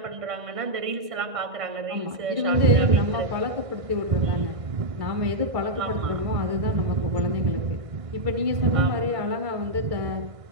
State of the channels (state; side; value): late; left; 1.6 ms